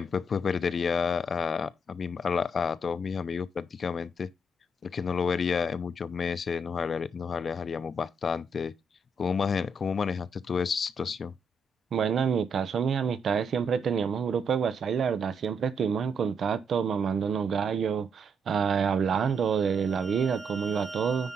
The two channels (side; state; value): both; normal; correlation 0.76